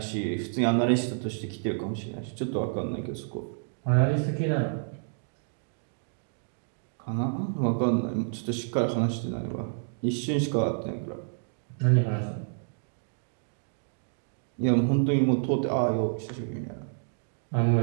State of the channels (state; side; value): silent; left; digital silence